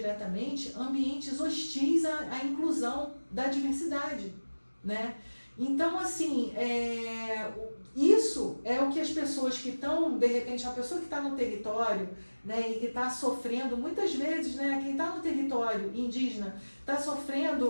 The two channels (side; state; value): both; inverted; correlation -1.00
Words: ambientes hostis à inclusão da diversidade. Né? Então, assim, isso é o que as pessoas que estão, de repente, uma pessoa que está no território, né, e que está sofrendo, muitas vezes, né, quem está no território indígena está